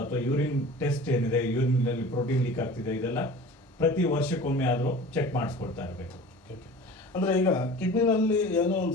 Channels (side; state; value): both; normal; correlation 0.40